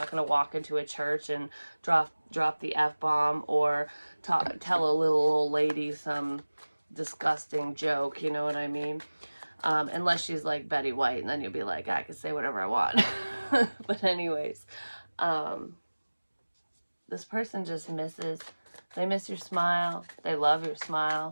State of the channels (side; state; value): both; inverted; correlation -1.00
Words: going to walk into a church and drop the F-bomb, or tell a little old lady some disgusting joke, you know what I mean? Unless she's like Betty White, and then you'll be like, I can say whatever I want. But anyways, this person just they miss your smile. They love your